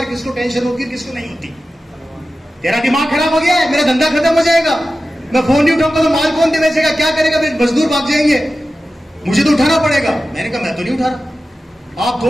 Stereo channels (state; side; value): normal; both; correlation 0.94